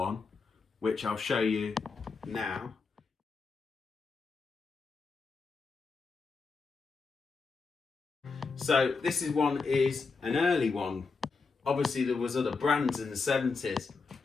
which I'll show you now. So this is an early one. Obviously there was other brands in the 70s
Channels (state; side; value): quieter; right; 4.6 dB